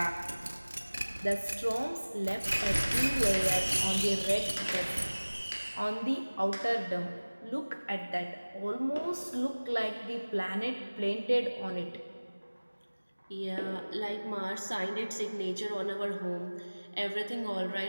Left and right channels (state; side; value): inverted; both; correlation -1.00